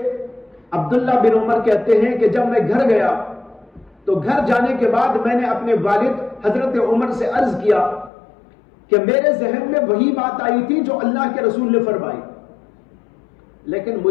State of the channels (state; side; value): drops out; right; at 8.1 s